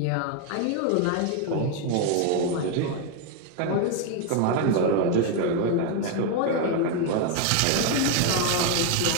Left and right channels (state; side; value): different; both; correlation 0.01